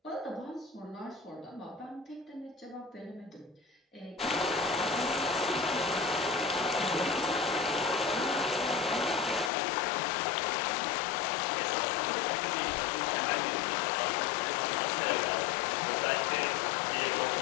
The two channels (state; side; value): drops out; right; at 9.5 s